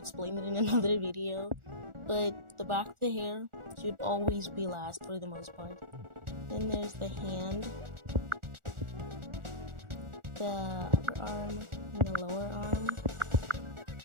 it in another video. But the back of the hair should always be last for the most part. Then there's the hand, the upper arm, and the lower arm.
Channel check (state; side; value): late; left; 1.4 ms